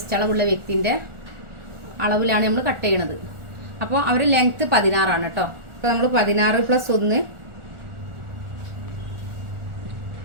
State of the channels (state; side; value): late; left; 1.4 ms